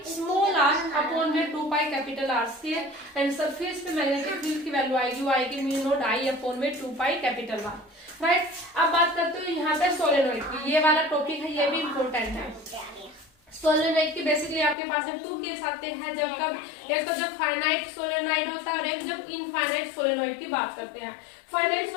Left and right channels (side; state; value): right; drops out; at 14.8 s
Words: small r upon में 2 pi capital R square, and surface पे मैग्नेटिक फील्ड की वैल्यू आएगी वो आएगी म्यू नॉट आई अपॉन में 2 पाई कैपिटल आर। राइट, अब बात करते हो यहाँ पे सोलेनोइड की, ये वाला टॉपिक है, ये भी इम्पोर्टेंट है। सोलेनोइड की बेसिकली आपके पास 2 केस आते हैं, जब कब, एक तो जब फाइनाइट सोलेनोइड होता है और एक जब इनफाइनाइट सोलेनोइड की बात करते हैं। फाइनाइट